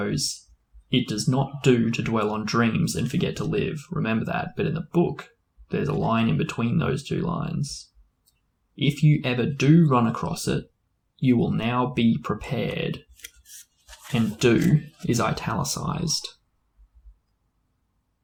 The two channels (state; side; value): identical; both; correlation 1.00